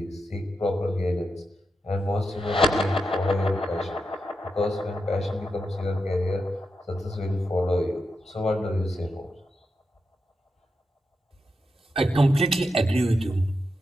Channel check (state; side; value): normal; both; correlation 0.87